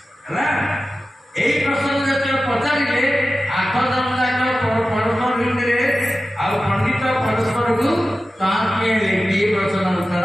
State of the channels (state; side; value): normal; both; correlation 0.94